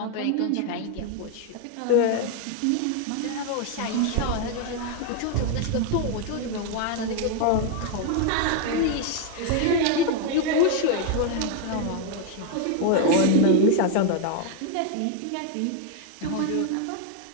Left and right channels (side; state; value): both; different; correlation 0.00